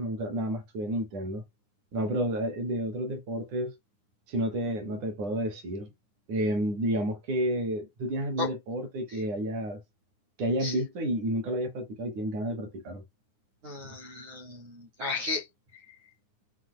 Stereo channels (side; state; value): left; late; 9.7 ms